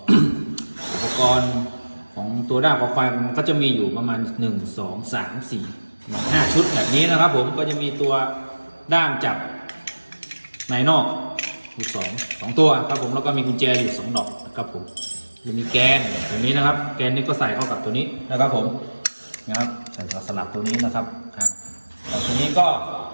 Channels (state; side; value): inverted; both; correlation -1.00